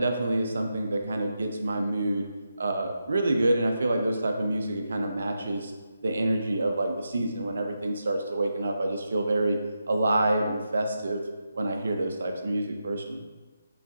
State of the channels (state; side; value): inverted; both; correlation -0.87